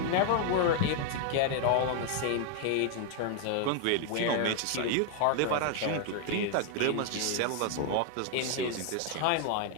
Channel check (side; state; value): both; different; correlation 0.00